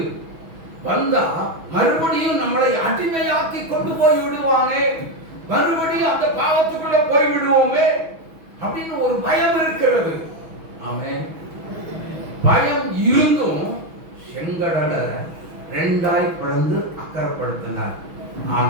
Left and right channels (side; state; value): left; late; 6.2 ms